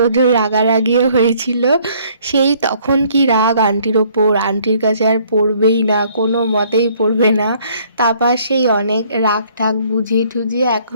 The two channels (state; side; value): inverted; both; correlation -0.61